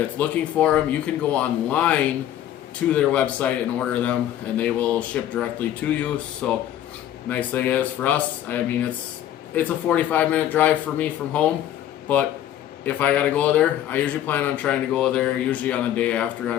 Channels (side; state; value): right; quieter; 11.6 dB